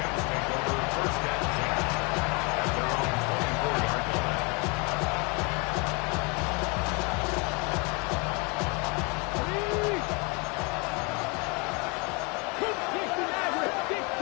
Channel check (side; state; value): right; quieter; 29.9 dB